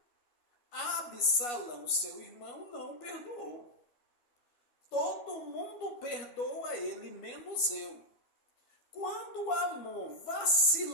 Absalão, seu irmão, não perdoou. Todo mundo perdoa ele, menos eu. Quando Amon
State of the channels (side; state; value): right; late; 12 ms